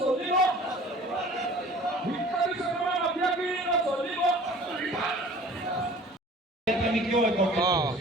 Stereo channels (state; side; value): normal; both; correlation 0.47